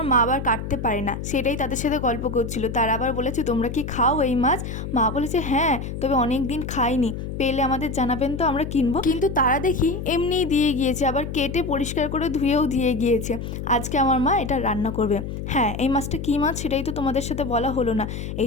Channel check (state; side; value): noise; left; hum, 6 dB below the sound